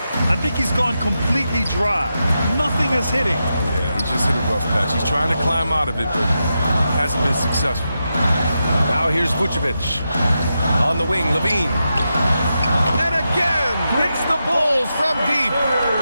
I think he's gone completely dry. Nothing is hitting. Yeah, he just hit a rough patch. He's trying to climb out of it, but hasn't been successful. Now here's Vucevic. On the wing, Levine. And again, hits the Bulls from deep.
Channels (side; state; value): both; inverted; correlation -0.87